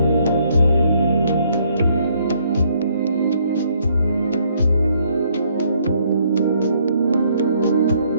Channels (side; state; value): both; inverted; correlation -0.68